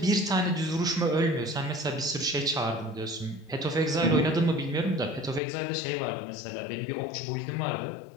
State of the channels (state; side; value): drops out; right; at 5.4 s